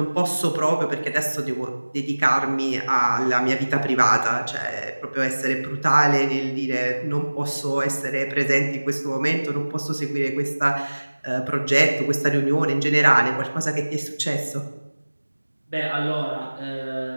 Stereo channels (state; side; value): inverted; both; correlation -1.00